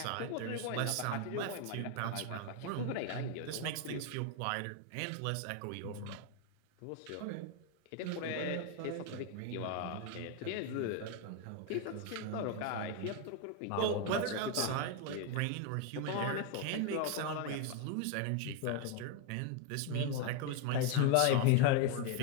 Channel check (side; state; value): both; different; correlation 0.01